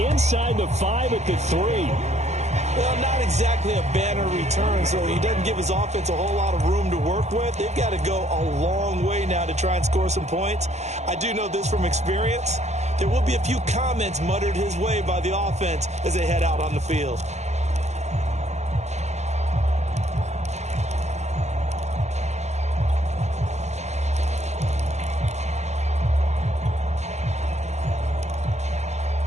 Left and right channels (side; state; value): left; late; 0.33 ms